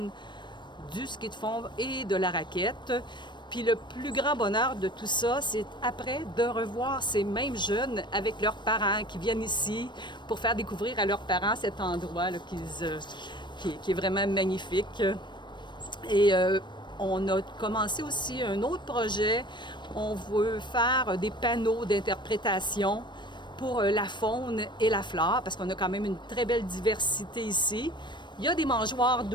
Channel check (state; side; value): late; right; 0.22 ms